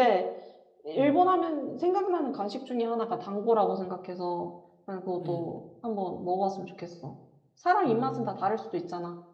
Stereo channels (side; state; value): both; identical; correlation 1.00